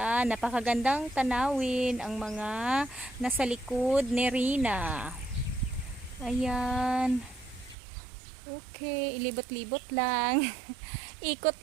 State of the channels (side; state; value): left; drops out; at 7.8 s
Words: napakagandang tanawin ang mga nasa likod ni Rina. Ayan. Okay, ilibot-libot lang.